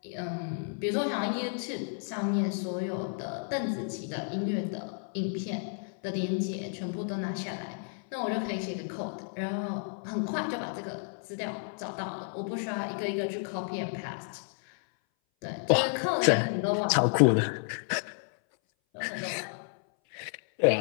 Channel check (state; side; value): silent; right; 57 dB below the other